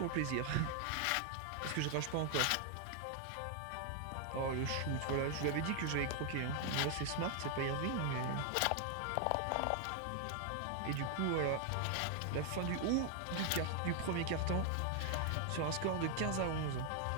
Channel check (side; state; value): both; different; correlation 0.00